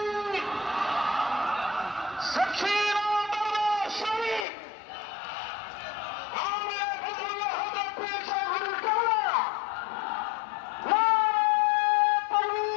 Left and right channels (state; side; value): drops out; right; at 4.5 s